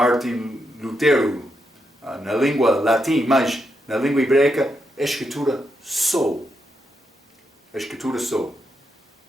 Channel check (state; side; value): normal; both; correlation 0.83